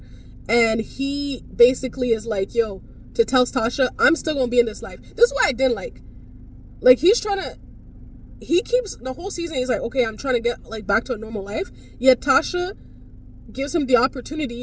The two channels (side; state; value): both; identical; correlation 1.00